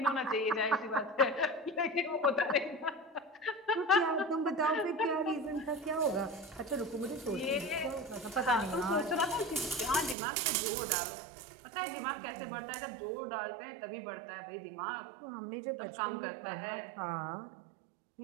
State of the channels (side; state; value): left; drops out; at 10.2 s